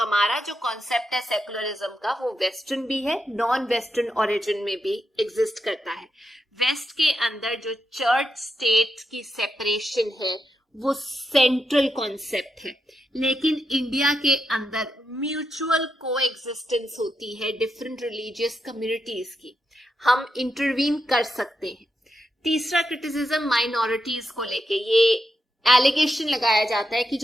जो कॉन्सेप्ट है सेकुलरिज्म का वो वेस्टर्न भी है, नॉन वेस्टर्न ओरिजिन में भी एग्जिस्ट करता है। वेस्ट के अंदर जो चर्च स्टेट की सेपरेशन है वो सेंट्रल कॉन्सेप्ट है, लेकिन इंडिया के अंदर म्यूचुअल कोएग्जिस्टेंस होती है डिफरेंट रिलीजियस कम्युनिटीज की। हम इंटरवीन कर सकते हैं। तीसरा क्रिटिसिज्म माइनॉरिटीज को लेके, ये एलिगेशन लगाया जाता है कि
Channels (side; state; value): both; normal; correlation 0.85